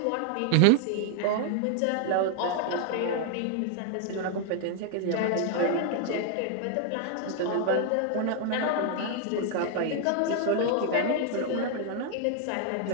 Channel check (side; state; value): both; different; correlation 0.00